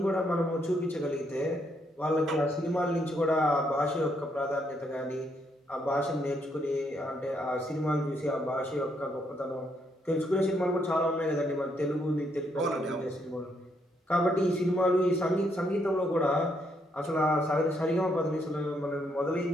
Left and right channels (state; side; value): normal; both; correlation 0.74